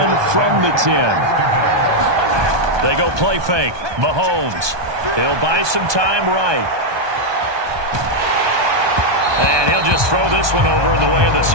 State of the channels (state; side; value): late; left; 1.2 ms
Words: from the 10. They go play fake. Mahomes. He'll buy some time right. And he'll just throw this one over in the way of the